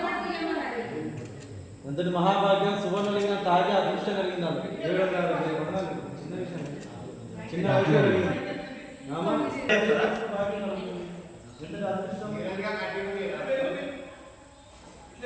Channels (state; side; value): identical; both; correlation 1.00